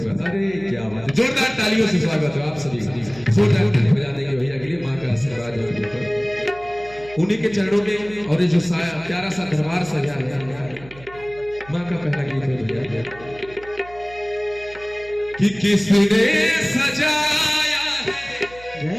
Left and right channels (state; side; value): noise; right; hum, 21 dB below the sound